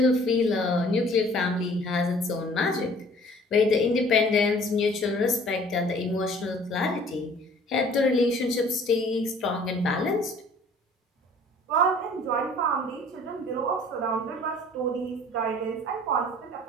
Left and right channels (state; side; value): normal; both; correlation 0.52